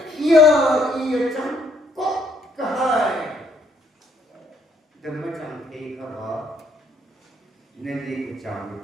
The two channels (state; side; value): normal; both; correlation 0.68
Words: yêu chẳng có cái hai đừng có chẳng thấy cái đó nên đi cái chẳng